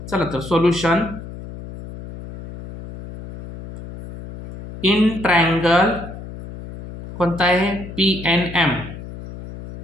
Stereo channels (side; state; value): left; noise; hum, 13 dB below the sound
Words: चला तर सोल्युशन. इन ट्रायंगल कोणता आहे, PNM.